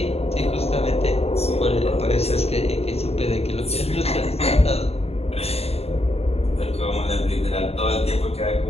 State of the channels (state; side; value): late; right; 0.30 ms